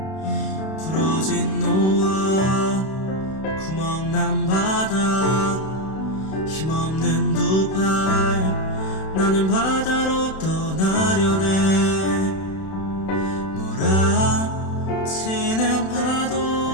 부러진 노아, 구멍난 바다, 힘없는 두 팔, 나는 바다로 떠나려네. 몰아치는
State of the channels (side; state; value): right; late; 31 ms